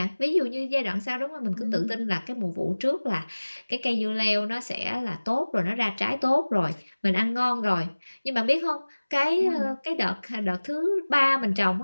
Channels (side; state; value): both; inverted; correlation -1.00